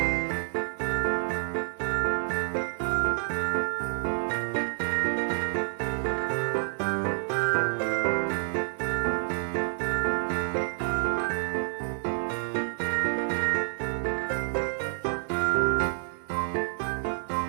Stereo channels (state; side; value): silent; left; digital silence